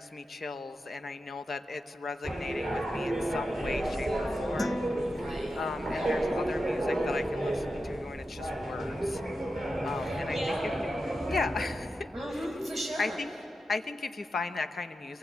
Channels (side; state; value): both; normal; correlation 0.90